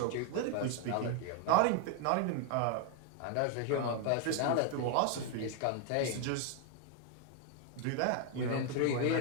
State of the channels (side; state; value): both; different; correlation 0.01